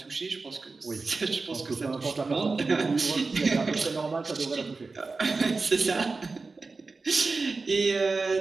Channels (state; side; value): quieter; left; 3.9 dB